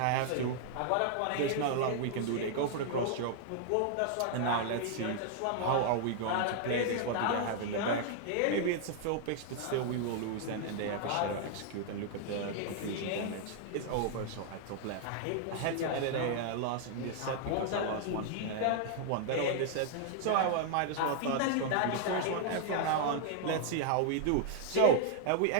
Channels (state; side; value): different; both; correlation 0.00